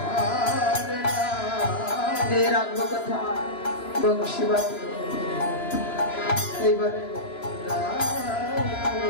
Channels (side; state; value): right; late; 3.0 ms